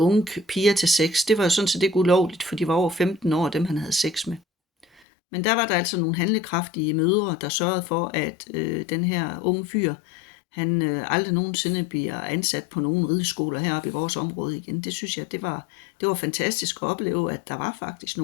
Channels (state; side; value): drops out; right; at 5.0 s